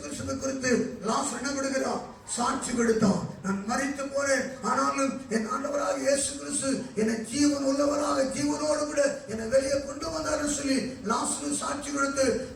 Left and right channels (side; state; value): both; identical; correlation 1.00